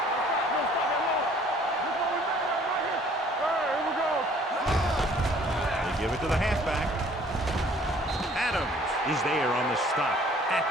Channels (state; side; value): normal; both; correlation 0.56